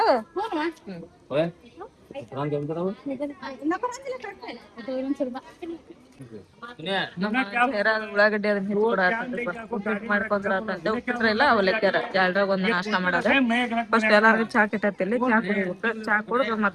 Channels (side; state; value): both; identical; correlation 1.00